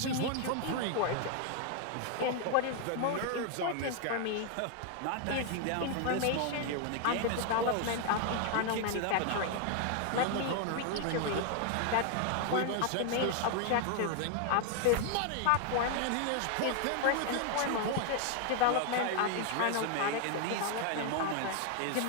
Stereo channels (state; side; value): different; both; correlation 0.00